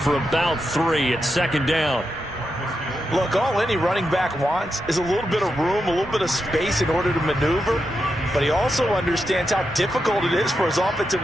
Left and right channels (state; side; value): normal; both; correlation 0.86